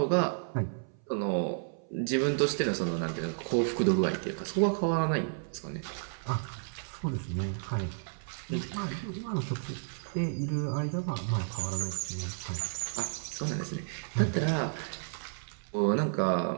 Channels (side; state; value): left; silent; 56 dB below the other